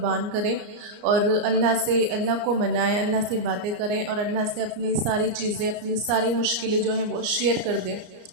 کریں اور اللہ کو منائیں، اللہ سے باتیں کریں اور اللہ سے اپنی ساری چیزیں، اپنی ساری مشکلیں جو ہیں وہ شیئر کر دیں۔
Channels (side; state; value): left; late; 34 ms